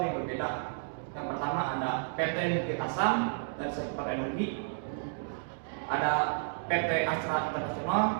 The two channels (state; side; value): silent; left; digital silence